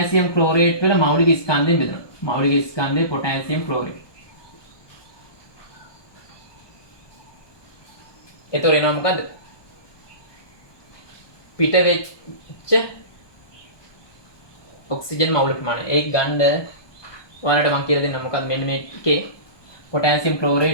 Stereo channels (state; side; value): late; right; 1.2 ms